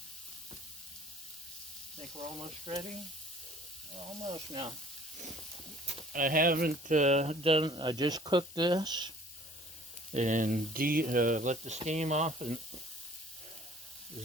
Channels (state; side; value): normal; both; correlation 0.52